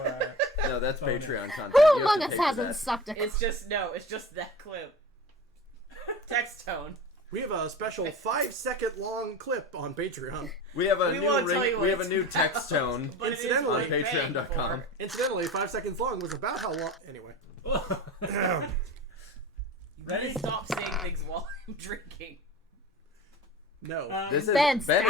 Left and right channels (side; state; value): both; normal; correlation 0.34